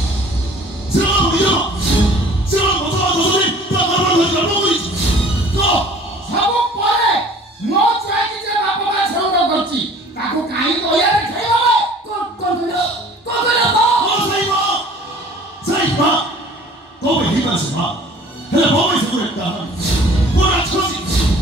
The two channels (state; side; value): normal; both; correlation 0.49